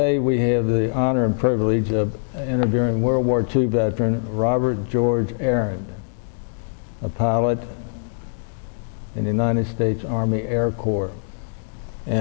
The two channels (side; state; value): right; silent; digital silence